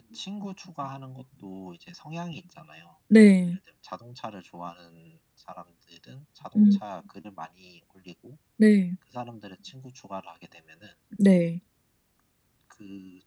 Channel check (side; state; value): both; identical; correlation 1.00